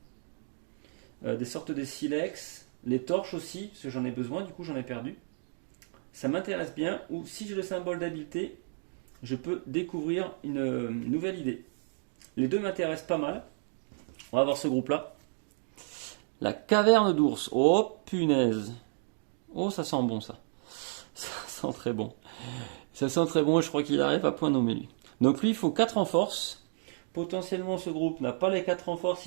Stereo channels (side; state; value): left; silent; digital silence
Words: des sortes de silex, les torches aussi, parce que j'en ai besoin, du coup j'en ai perdu. Ça m'intéresse bien, ou si j'ai le symbole d'habileté, je peux découvrir une nouvelle idée. Les deux m'intéressent pas mal. On va voir ce groupe-là. La caverne d'ours. Oh punaise. Oh, ça sent bon ça. Ça sent très bon. Ça sent très bon et je crois qu'il arrive à point nommé lui. Donc lui, il faut 4 en force. Potentiellement, ce groupe n'a pas les 4 en force,